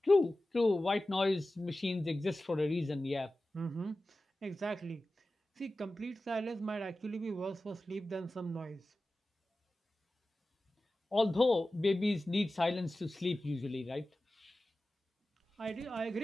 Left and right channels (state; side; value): normal; both; correlation 0.95